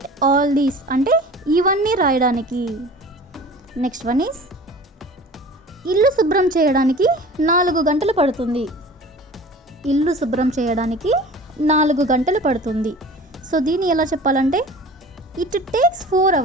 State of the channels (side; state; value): both; normal; correlation 0.41